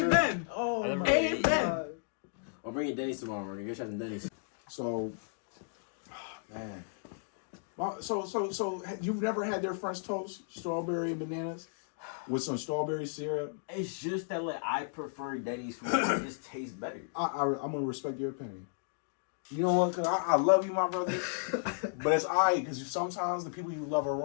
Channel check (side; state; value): right; silent; digital silence